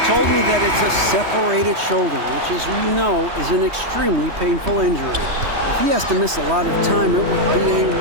told me that it's a separated shoulder, which, as we know, is an extremely painful injury. If he has to miss a lot of time, it would be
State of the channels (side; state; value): left; late; 3.2 ms